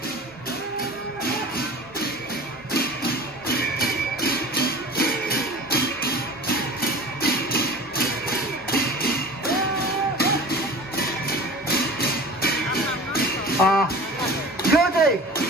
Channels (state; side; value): normal; both; correlation 0.38